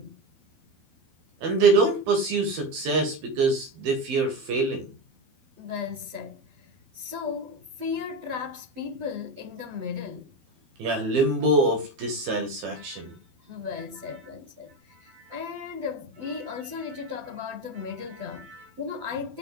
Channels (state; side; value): late; left; 12 ms